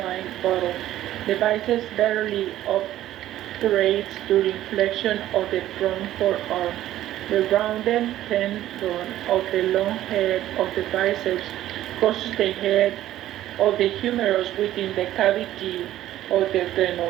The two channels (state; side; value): quieter; left; 13.5 dB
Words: bottle. The biceps barely operates during flexion of the front forearm. The rounded tendon of the long head of the biceps crosses the head of the humerus within the cavity of the